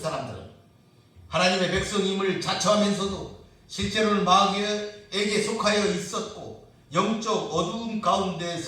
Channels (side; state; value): both; identical; correlation 1.00